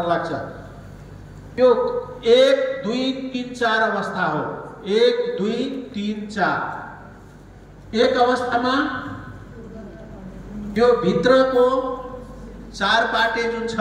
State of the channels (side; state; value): both; identical; correlation 1.00